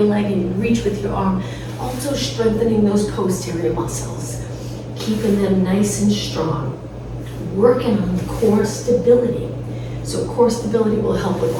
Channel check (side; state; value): both; identical; correlation 1.00